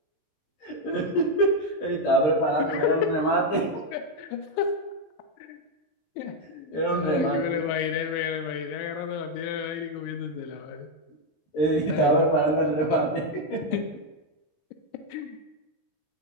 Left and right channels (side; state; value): right; late; 19 ms